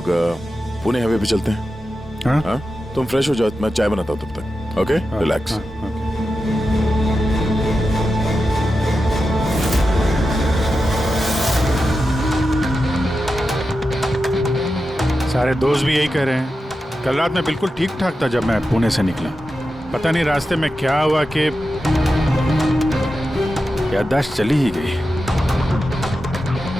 पुणे हाईवे पे चलते हैं। हाँ? हाँ? तुम फ्रेश हो जाओ, मैं चाय बनाता हूँ तब तक। Okay, relax. सारे दोस्त भी यही कह रहे हैं। कल रात मैं बिल्कुल ठीक ठाक था जब मैं पुणे से निकला। पता नहीं रास्ते में क्या हुआ कि याददाश्त चली ही गई।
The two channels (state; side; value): normal; both; correlation 0.91